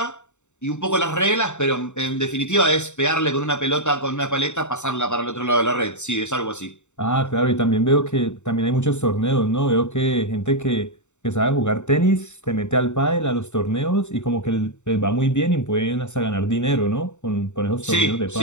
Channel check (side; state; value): right; late; 0.84 ms